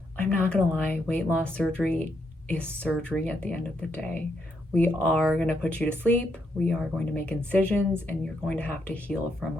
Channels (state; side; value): normal; both; correlation 0.78